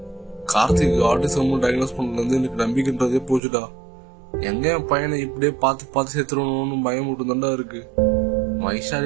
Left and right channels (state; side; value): drops out; left; at 3.4 s